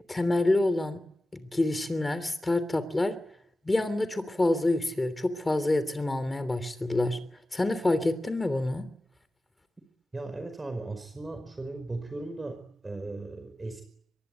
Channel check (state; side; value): normal; both; correlation 0.95